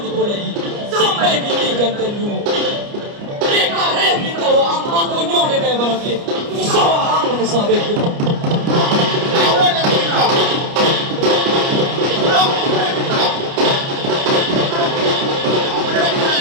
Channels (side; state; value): left; late; 29 ms